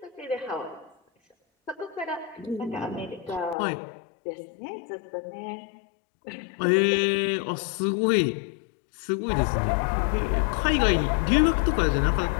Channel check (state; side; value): drops out; right; at 3.6 s